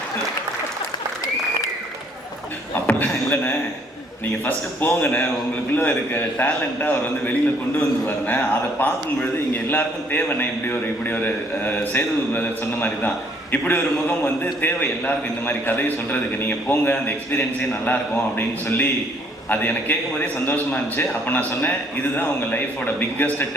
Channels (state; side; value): normal; both; correlation 0.63